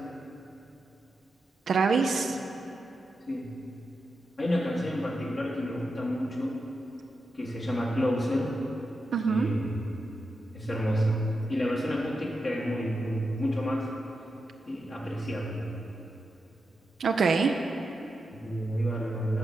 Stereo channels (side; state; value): both; normal; correlation 0.88